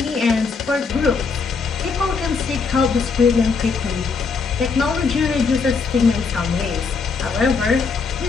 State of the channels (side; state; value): right; quieter; 5.0 dB